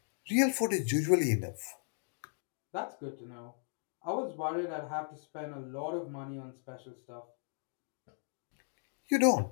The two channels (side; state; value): right; silent; 54 dB below the other